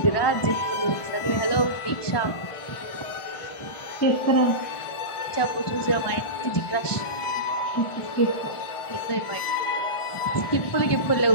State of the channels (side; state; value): right; late; 1.4 ms